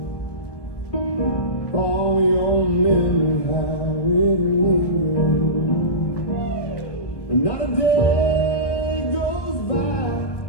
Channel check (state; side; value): late; right; 1.1 ms